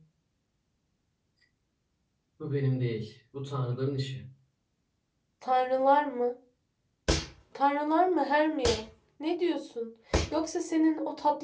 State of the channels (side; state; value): both; identical; correlation 1.00